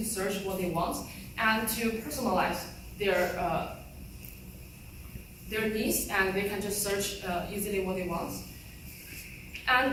search what they want and to personalize their needs, and they can just search easily what they want. And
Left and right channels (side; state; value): both; identical; correlation 1.00